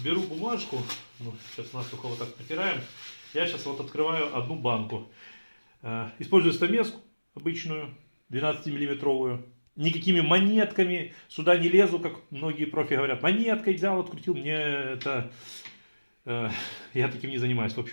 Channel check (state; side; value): inverted; both; correlation -1.00